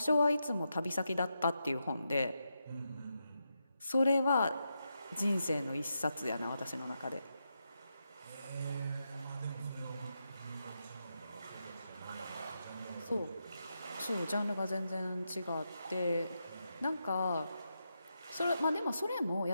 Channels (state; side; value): inverted; both; correlation -0.85